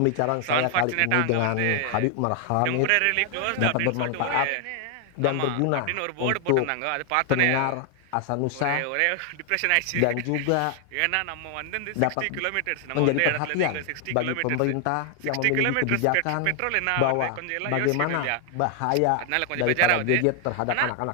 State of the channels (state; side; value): different; both; correlation 0.00